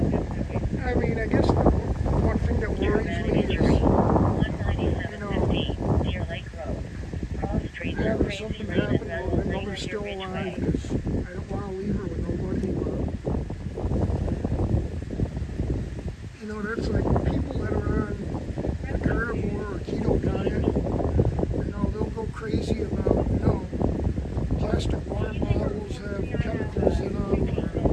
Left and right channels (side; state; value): both; identical; correlation 1.00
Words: I mean, I guess the one thing that worries me is, you know, having something happen while I know they're still alive, because I don't want to leave her with nobody. But, you know, that's like people that are on a carnivore or keto diet, you know, they'll go crazy about, you know, plastic water bottles have chemicals in them,